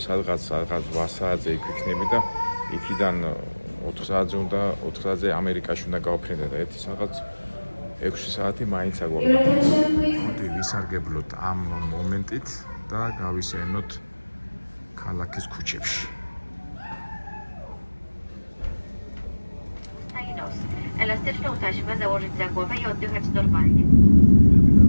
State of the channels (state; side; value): inverted; both; correlation -1.00